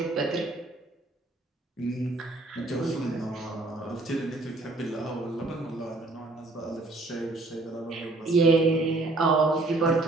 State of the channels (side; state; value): left; quieter; 3.1 dB